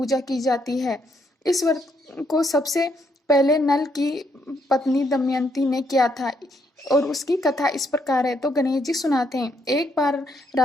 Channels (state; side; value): normal; both; correlation 0.74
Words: की जाती है। इस व्रत को सबसे पहले नल की पत्नी दमयंती ने किया था और उसकी कथा इस प्रकार है। तो गणेश जी सुनाते हैं। एक बार